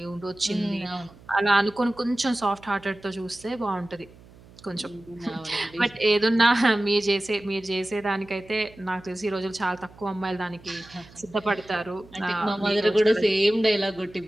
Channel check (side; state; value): right; noise; hum, 23 dB below the sound